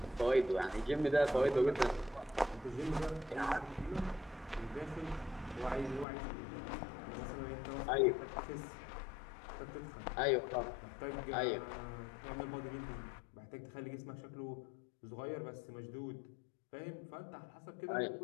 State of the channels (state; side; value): drops out; right; at 6.1 s